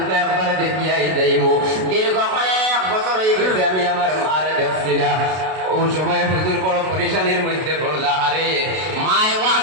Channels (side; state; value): left; late; 32 ms